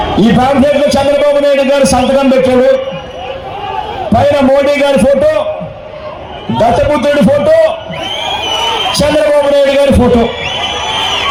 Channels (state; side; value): identical; both; correlation 1.00